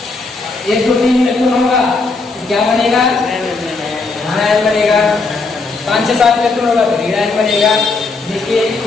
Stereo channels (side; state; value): right; quieter; 3.9 dB